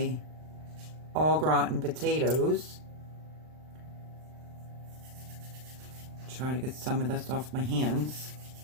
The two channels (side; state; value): left; late; 39 ms